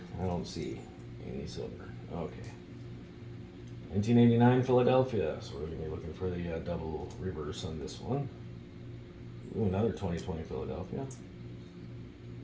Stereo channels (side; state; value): both; identical; correlation 1.00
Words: I don't see any silver. Okay. 1989 Philadelphia. So we're going to be looking for the double reverse on this one. Ooh, another 2020 Philadelphia.